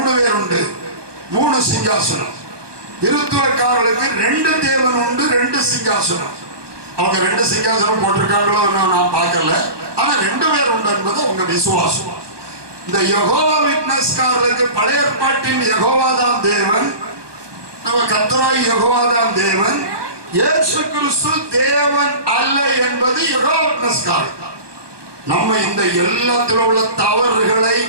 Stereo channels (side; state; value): left; late; 1.2 ms